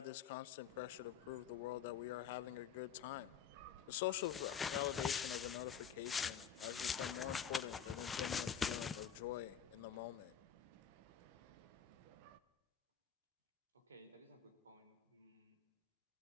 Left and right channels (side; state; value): right; quieter; 8.1 dB